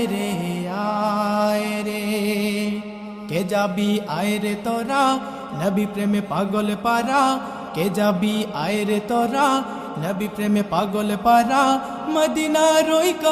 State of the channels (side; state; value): both; identical; correlation 1.00